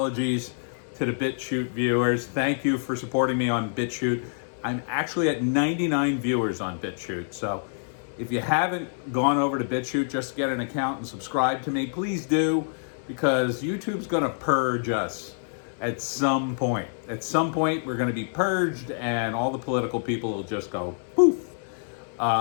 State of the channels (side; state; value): right; silent; 59 dB below the other